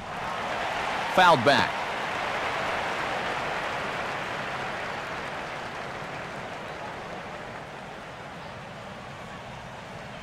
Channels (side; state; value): both; identical; correlation 1.00